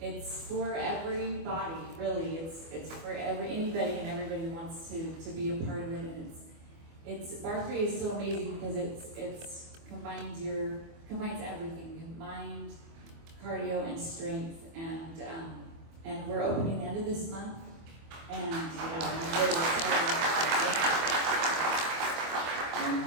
for everybody, really. It's for anybody and everybody who wants to be a part of it. And it's Bar 3 is so amazing because it's combines everything, mind, cardio, and strength. And we're opening the end of this month. And I'm really excited.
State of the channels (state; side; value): late; left; 24 ms